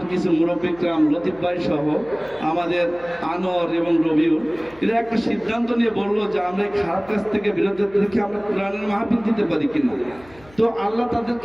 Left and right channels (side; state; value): left; noise; hum, 25 dB below the sound